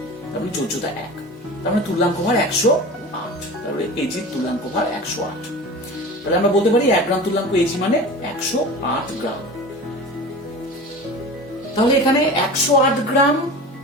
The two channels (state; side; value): normal; both; correlation 0.34